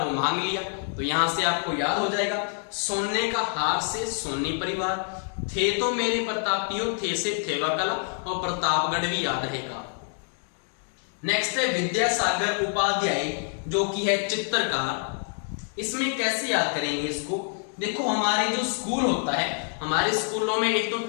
मांग लिया। तो यहां से आपको याद हो जाएगा, सोने का हार से सोनी परिवार, थे तो मेरे प्रतापियों, थे से थेवा कला, और प्रतापगढ़ भी याद रहेगा। नेक्स्ट है विद्यासागर उपाध्याय, जो कि है चित्रकार। इसमें कैसे याद करेंगे इसको, देखो हमारे जो स्कूल होता है, हमारे स्कूलों में एक तो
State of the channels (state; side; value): silent; right; 55 dB below the other